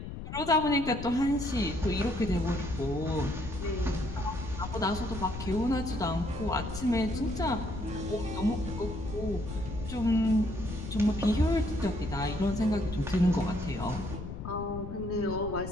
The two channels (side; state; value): left; noise; rumble, 8 dB below the sound